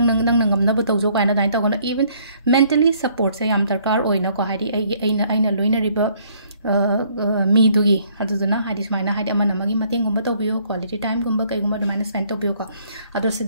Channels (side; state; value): both; inverted; correlation -0.64